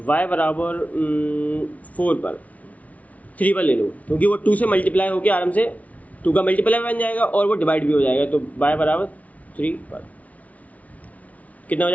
y बराबर 4 पर, 3 पर ले लो, क्योंकि वो 2 से मल्टीप्लाई होकर आराम से 2 का मल्टीप्लाई बन जाएगा और वो डिवाइड भी हो जाएगा। तो y बराबर 3 पर कितना हो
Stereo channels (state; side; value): late; right; 0.069 ms